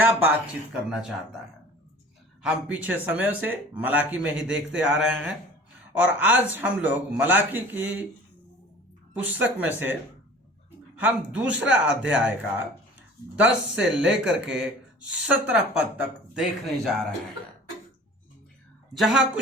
बातचीत करना चाहता है। हम पीछे समय से मलाकी में ही देखते आ रहे हैं और आज हम लोग मलाकी की पुस्तक में से हम दूसरा अध्याय का 10 से लेकर के 17 पद तक देखने जा रहे हैं, जहां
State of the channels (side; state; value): both; normal; correlation 0.44